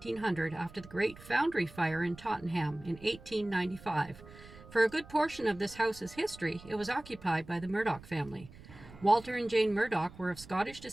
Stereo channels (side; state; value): right; noise; rumble, 19 dB below the sound